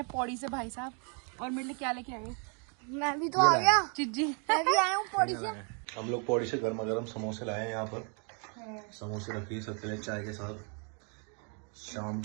पौड़ी से भाई साहब, और मेरे लिए क्या लेके आए? मैं भी तो आ गया, चिज्जी। मैं भी आया हूँ पौड़ी से। हम लोग पौड़ी से गर्मा गर्म समोसे लाए हैं यहाँ पर। समोसे रखिए सबके लिए चाय के साथ। शाम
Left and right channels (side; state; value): left; quieter; 37.8 dB